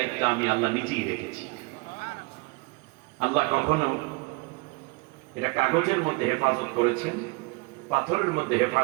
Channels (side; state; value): left; quieter; 26.4 dB